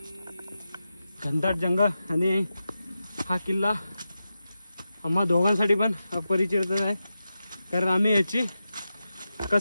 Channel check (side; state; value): both; inverted; correlation -0.91